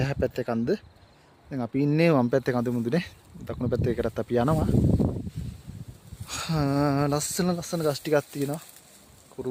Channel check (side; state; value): both; identical; correlation 1.00